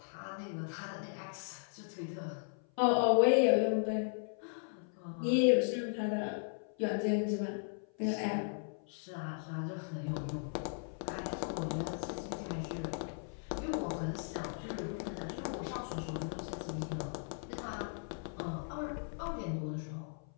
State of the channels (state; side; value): silent; right; 53 dB below the other